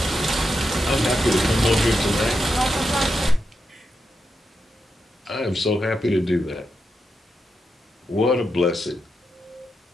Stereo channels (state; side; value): normal; both; correlation 0.86